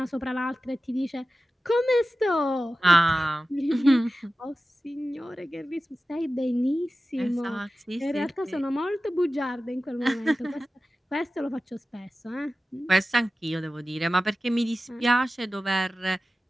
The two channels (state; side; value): normal; both; correlation 0.95